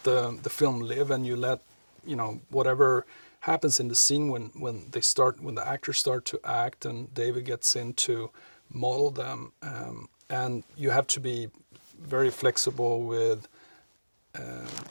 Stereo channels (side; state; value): both; inverted; correlation -1.00